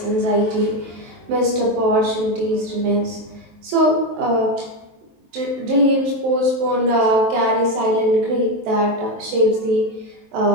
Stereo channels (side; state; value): left; late; 23 ms